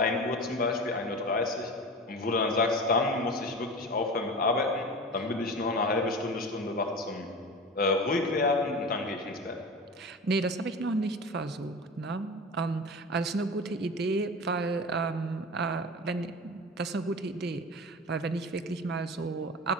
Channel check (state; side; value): normal; both; correlation 0.31